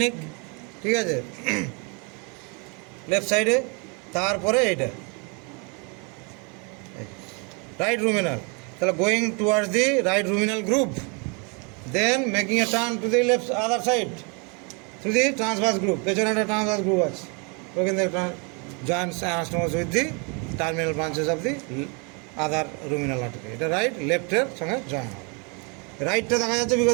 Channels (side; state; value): left; quieter; 33.7 dB